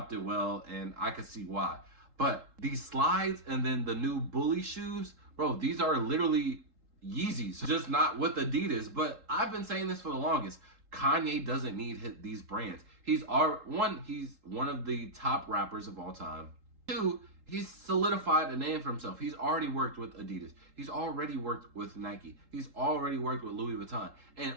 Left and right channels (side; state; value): left; late; 3.8 ms